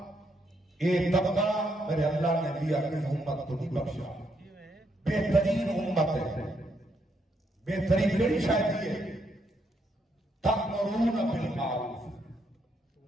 طبقہ میرے اللہ نے دیا کہ امت کو نہیں بخشا بہترین امت ہے بہترین کئی شاید یہ تأمرون بالمعروف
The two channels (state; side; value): normal; both; correlation 0.76